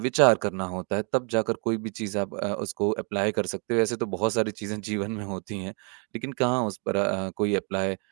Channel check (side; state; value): left; quieter; 37.2 dB